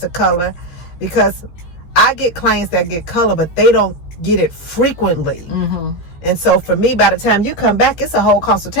color, because I get clients that get color, but they don't get it frequently. And so for me, by the time you come back, it's a whole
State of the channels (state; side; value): late; right; 15 ms